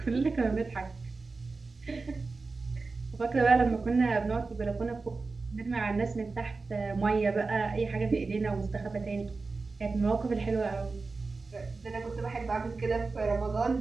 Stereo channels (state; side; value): quieter; left; 4.0 dB